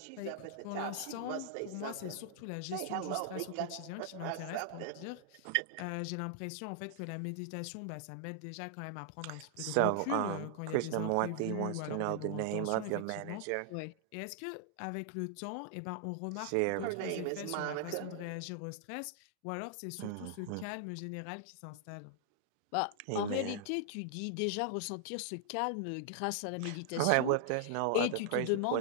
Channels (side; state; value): both; different; correlation -0.01